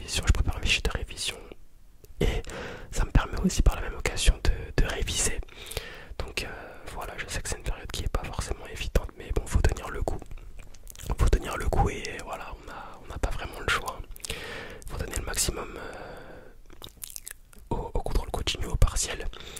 aussi par la même occasion de réviser. Donc voilà, je sais que c'est une période qui est pas forcément évidente, mais bon, faut tenir le coup. Faut tenir le coup et voilà, on n'a pas vraiment le choix. Faut donner le maximum au contrôle continu, au partiel,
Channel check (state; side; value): identical; both; correlation 1.00